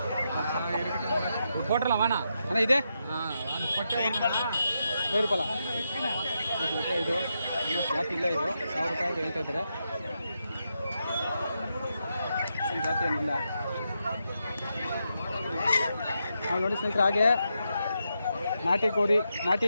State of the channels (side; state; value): both; inverted; correlation -0.84